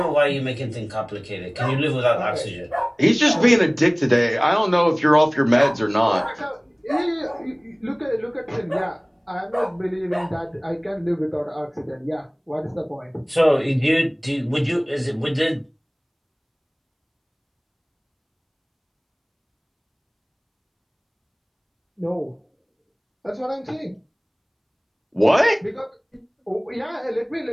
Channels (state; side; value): identical; both; correlation 1.00